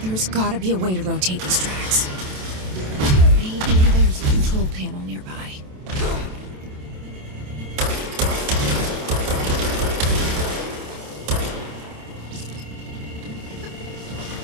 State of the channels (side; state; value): left; late; 27 ms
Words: There's gotta be a way to rotate these tracks. Maybe there's a control panel nearby.